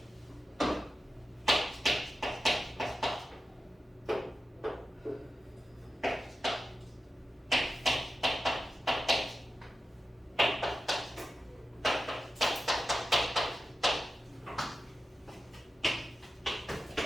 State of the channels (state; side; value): normal; both; correlation 0.92